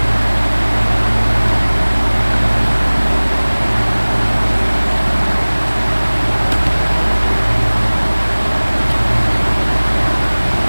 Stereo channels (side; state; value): both; inverted; correlation -1.00